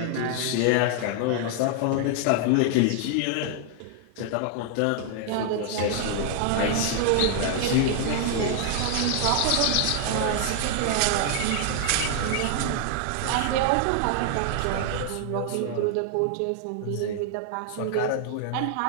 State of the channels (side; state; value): both; different; correlation 0.00